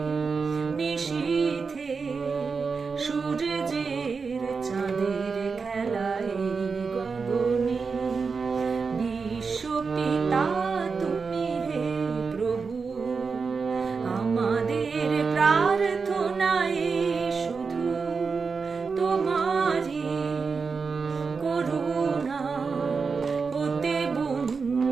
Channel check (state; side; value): quieter; left; 5.0 dB